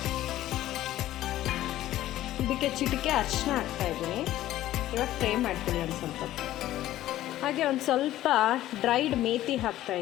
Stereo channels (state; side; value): quieter; right; 14.2 dB